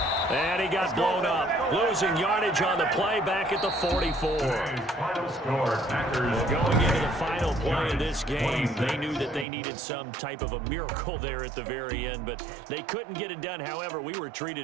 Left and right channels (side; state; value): left; drops out; at 9.5 s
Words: And he got blown up. Losing yardage on the play back at the 44. Final score, Packers. Going into the final play of this game, they knew that they needed some type of a miracle there at the very end, but they couldn't get it done. However, we were treated